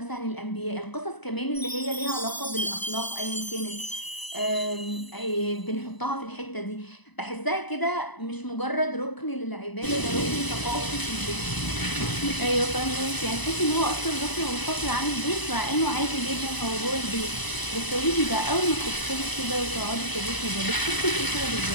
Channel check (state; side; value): late; right; 1.0 ms